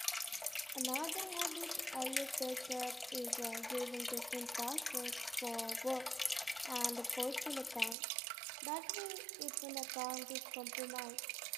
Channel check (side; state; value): left; drops out; at 8.0 s